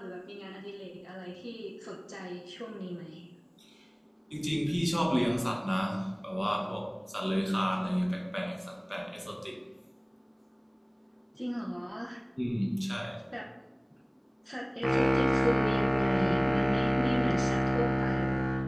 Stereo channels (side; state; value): both; identical; correlation 1.00